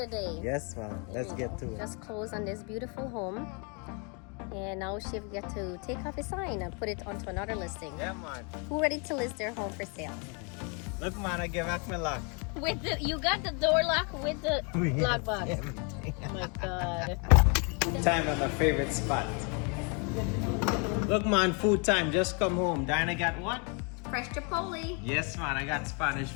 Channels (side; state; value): right; quieter; 35.1 dB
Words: day. Yes, ma'am. Let's get to it. Just close on this beautiful home. And now Shiv get to take off his sign and put it onto another listing. Yeah, man. Who ready to list their home for sale? Look, man, I give back my lock. With the, you got the door lock with the lock box. Everything. Oh my God. Time at my favorite spot. Look, man, food time. Just come home. Diana got what? Fresh Chipotle. Yes, man. I got Spanish